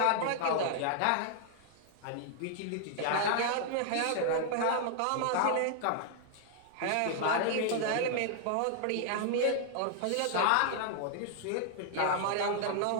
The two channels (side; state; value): both; different; correlation 0.00